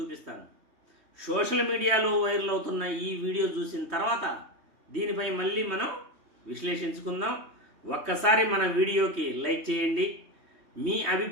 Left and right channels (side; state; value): left; late; 3.2 ms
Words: సోషల్ మీడియాలో వైరల్ అవుతున్న ఈ వీడియో చూసిన తర్వాత దీనిపై మళ్ళీ మనం విశ్లేషించుకుందాం. ఒక్కసారి మన వీడియోకి లైక్ చేయండి, మీ